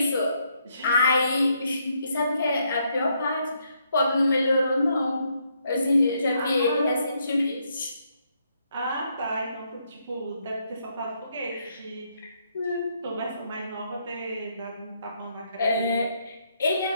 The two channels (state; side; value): inverted; both; correlation -0.75